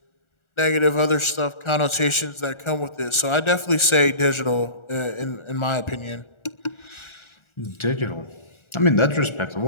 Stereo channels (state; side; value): late; right; 1.4 ms